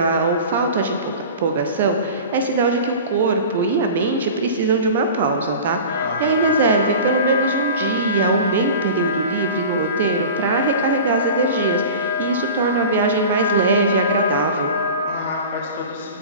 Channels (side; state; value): both; inverted; correlation -0.36